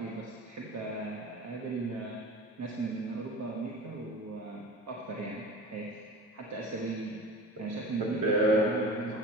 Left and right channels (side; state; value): both; normal; correlation 0.35